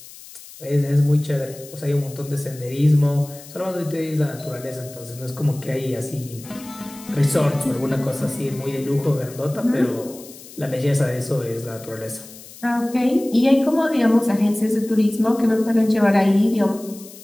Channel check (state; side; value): noise; left; hiss, 18 dB below the sound